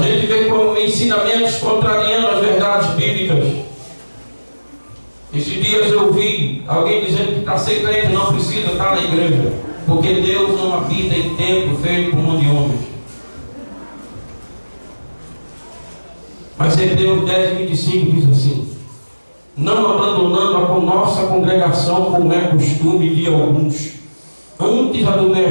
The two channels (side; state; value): both; inverted; correlation -1.00